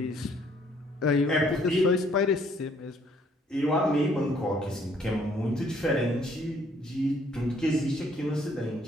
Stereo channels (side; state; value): both; normal; correlation 0.64